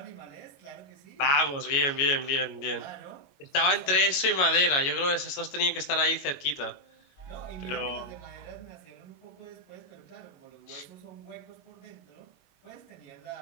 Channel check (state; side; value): late; right; 21 ms